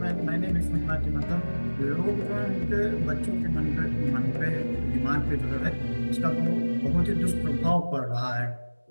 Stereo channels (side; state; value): both; inverted; correlation -1.00